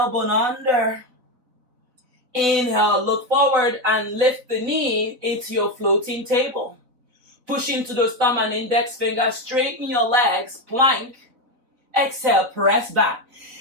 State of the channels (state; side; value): late; left; 4.1 ms